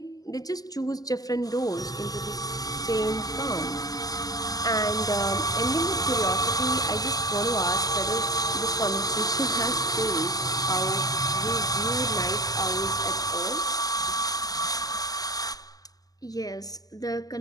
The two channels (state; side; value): late; right; 0.18 ms